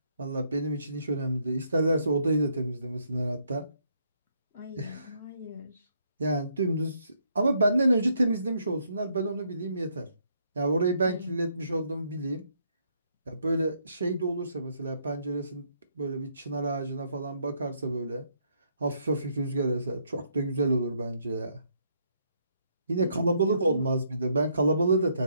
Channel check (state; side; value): inverted; both; correlation -0.72